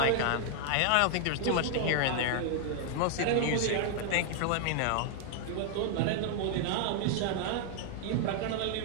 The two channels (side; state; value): both; different; correlation 0.00